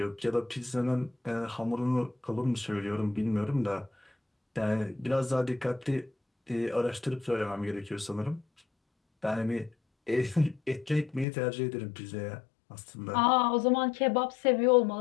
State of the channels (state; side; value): drops out; right; at 11.2 s